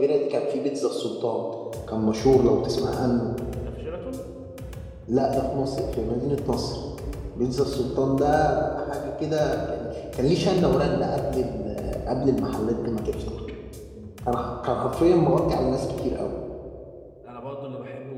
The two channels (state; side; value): identical; both; correlation 1.00